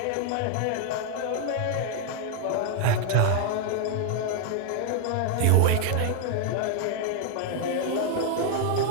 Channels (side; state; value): both; different; correlation 0.00